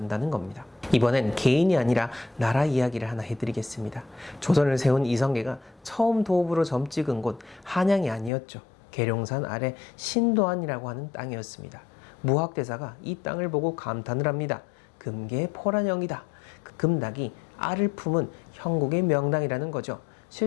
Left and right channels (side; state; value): right; drops out; at 8.3 s